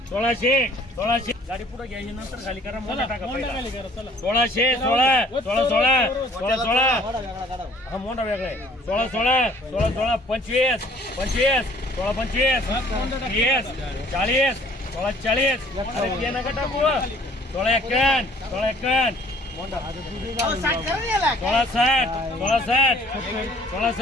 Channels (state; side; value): normal; both; correlation 0.56